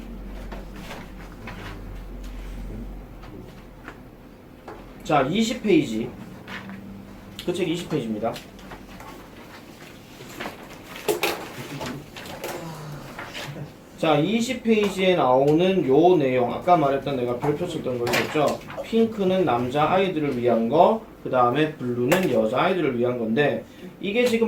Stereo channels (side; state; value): both; identical; correlation 1.00